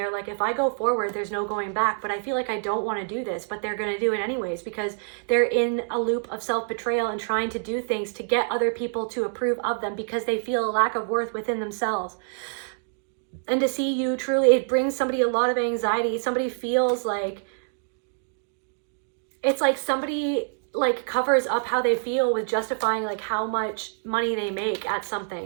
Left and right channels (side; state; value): left; silent; digital silence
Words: like, if I go forward, there's no going back, but I feel like I don't want to do this, but they're going to do it anyways, because they're in a loop of self-betrayal and trying to do things to get other people to approve of them, because they feel a lack of worth within themselves. And to see you truly, it brings somebody a lot of anxiety. Somebody feels like, it's like somebody like covers up how they feel with justifying like how much money they make at